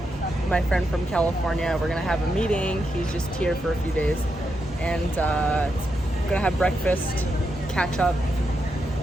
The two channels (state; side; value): normal; both; correlation 0.84